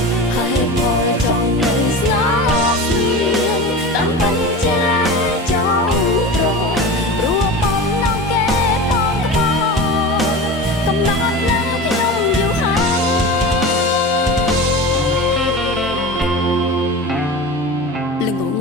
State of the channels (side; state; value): both; normal; correlation 0.30